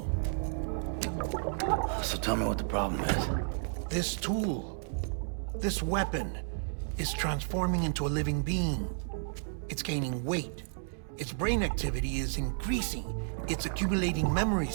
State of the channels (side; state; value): left; silent; digital silence